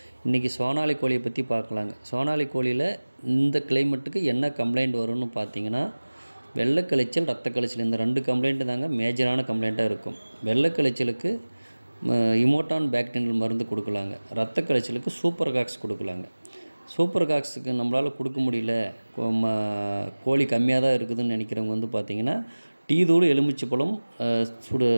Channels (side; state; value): both; inverted; correlation -1.00